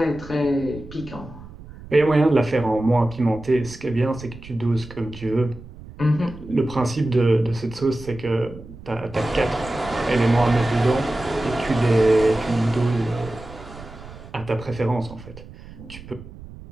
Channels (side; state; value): right; noise; rumble, 17 dB below the sound